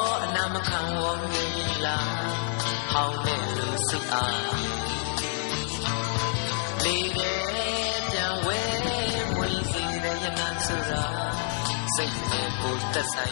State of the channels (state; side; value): silent; right; 59 dB below the other